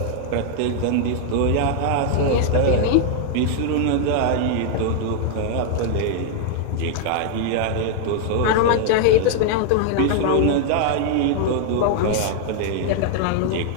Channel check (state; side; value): different; both; correlation 0.00